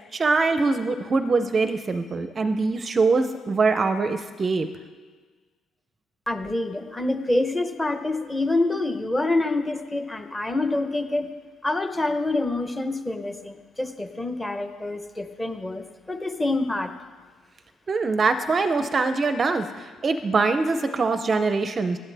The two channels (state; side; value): normal; both; correlation 0.89